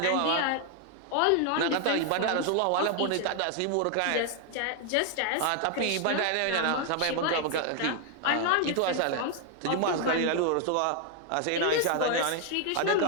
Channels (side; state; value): both; different; correlation 0.00